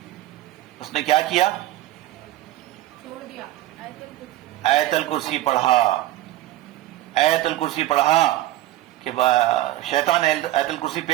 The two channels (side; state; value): left; quieter; 15.4 dB